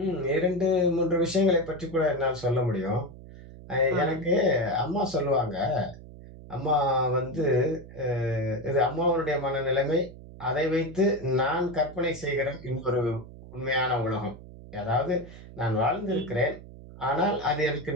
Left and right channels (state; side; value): noise; right; hum, 17 dB below the sound